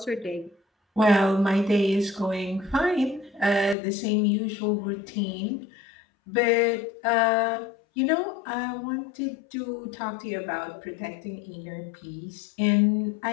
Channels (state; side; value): drops out; right; at 3.8 s